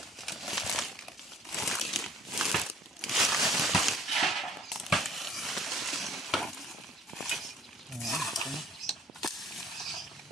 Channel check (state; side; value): normal; both; correlation 0.54